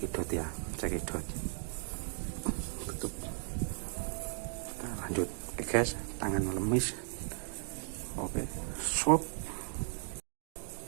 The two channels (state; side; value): silent; left; 54 dB below the other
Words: ya, cekidot tutup, kita lanjut. Oke guys, tangan lemis, oke swap,